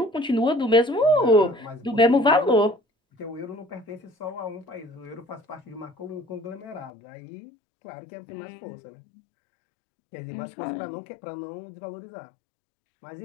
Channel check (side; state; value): right; drops out; at 6.9 s